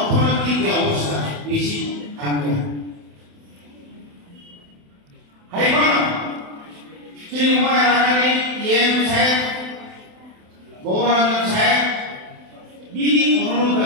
যে অবস্থা বেশি থাকবে হাইকোর্ট চিন্ময় রানানি ইএম সাহেব গৌরঞ্জন সাহেব বিনি অনুরোধ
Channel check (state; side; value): late; left; 27 ms